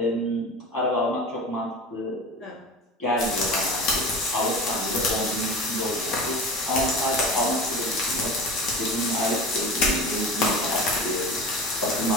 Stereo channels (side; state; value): both; normal; correlation 0.33